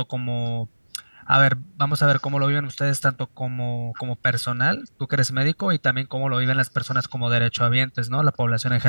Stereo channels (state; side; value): inverted; both; correlation -1.00